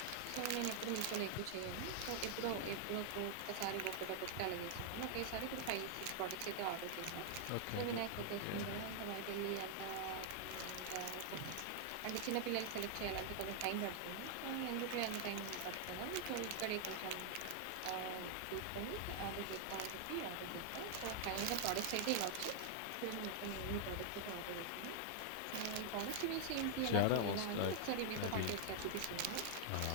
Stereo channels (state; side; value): different; both; correlation 0.00